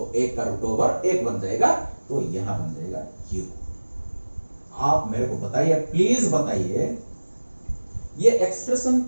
एक का रूट ओवर एक बन जाएगा, तो यहां बन जाएगा क्यू। आप मेरे को बताइए, प्लीज बताइए ये एक्सप्रेशन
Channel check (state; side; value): inverted; both; correlation -1.00